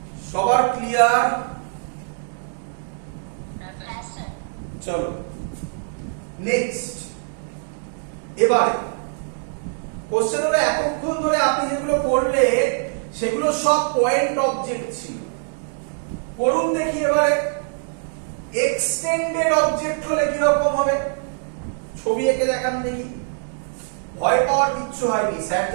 সবার ক্লিয়ার? চলো নেক্সট। এবারে কোশ্চেন হলো, এতক্ষণ ধরে আপনি যেগুলো করলে সেগুলো সব পয়েন্ট অবজেক্ট ছিল। করুন দেখি এবারে এক্সটেন্ডেড অবজেক্ট হলে কি রকম হবে, ছবি এঁকে দেখান দেখি। ভয় পাওয়ার কিচ্ছু হয়নি, স্যার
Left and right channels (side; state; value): left; silent; 63 dB below the other